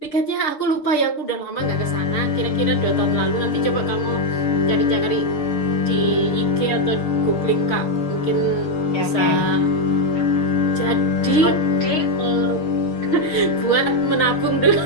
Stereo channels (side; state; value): right; late; 6.6 ms